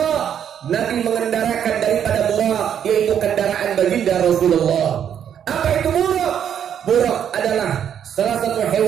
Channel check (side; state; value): left; quieter; 9.0 dB